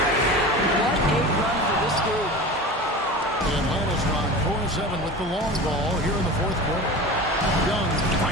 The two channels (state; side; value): normal; both; correlation 0.33